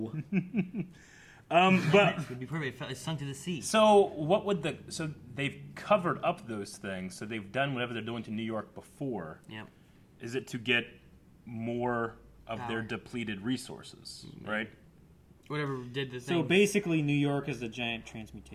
no? But it would be perfect. It sunk to the sea. So what would so they've covered up those things. So they've done whatever they're doing to New York before. Yep. Is it to get more of their depleted resources, right? Whatever did the thing. So basically, New York is the giant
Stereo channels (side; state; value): both; identical; correlation 1.00